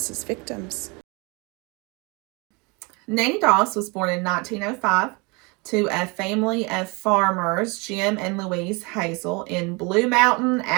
victims. Nanny Doss was born in 1905 to a family of farmers, Jim and Louise Hazel, in Blue Mountain,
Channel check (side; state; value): left; quieter; 28.7 dB